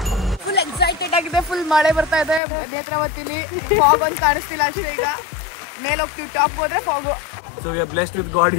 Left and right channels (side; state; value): right; drops out; at 2.4 s